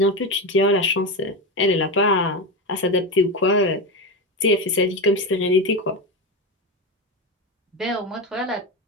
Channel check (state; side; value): normal; both; correlation 0.17